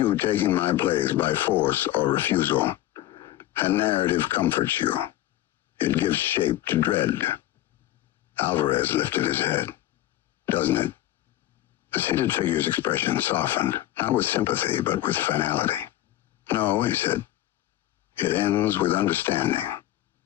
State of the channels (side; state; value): right; quieter; 14.5 dB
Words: taking my place by force or refusal. A narrative comforts you. It gives shape to dread. Alvarez lifted his head. Doesn't it? The seated figure's expression softened, not with sympathy, but with finality. No, he said. It ends with understanding.